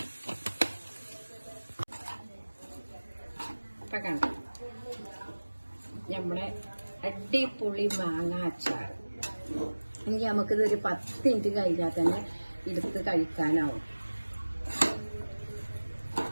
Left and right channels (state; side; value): inverted; both; correlation -1.00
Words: ഇപ്പൊ കണ്ടോ നമ്മളെ അടിപൊളി മാങ്ങ അച്ചാർ. ഇനി നമുക്കിതൊരു 10 മിനിറ്റ് കഴിഞ്ഞാൽ തന്നെ എടുത്ത് കഴിക്കാനാവും.